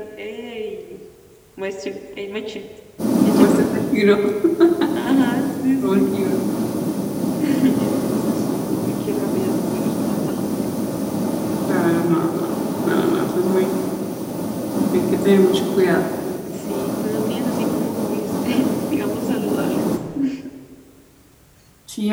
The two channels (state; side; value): identical; both; correlation 1.00